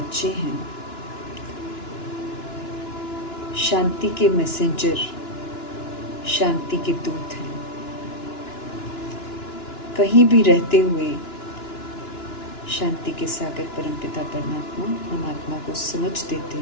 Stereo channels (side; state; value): right; late; 2.9 ms